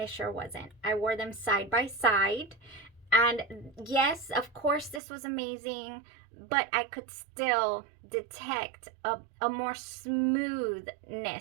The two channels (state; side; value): drops out; left; at 5.0 s